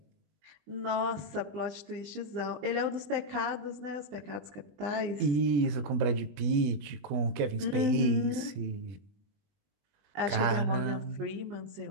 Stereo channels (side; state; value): left; late; 20 ms